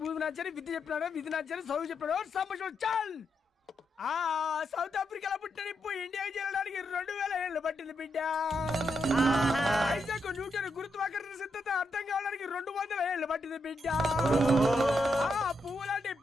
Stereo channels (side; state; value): both; normal; correlation 0.82